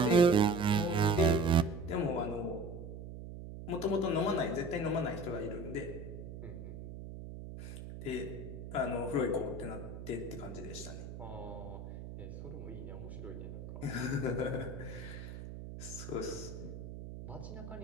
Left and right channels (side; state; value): right; noise; hum, 10 dB below the sound